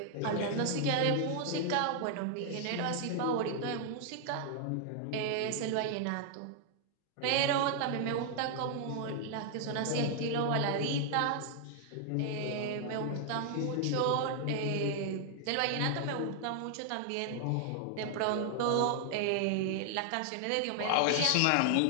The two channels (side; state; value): both; different; correlation 0.00